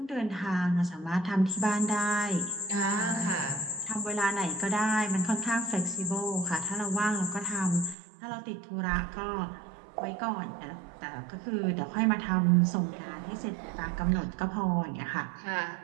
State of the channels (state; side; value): drops out; left; at 8.0 s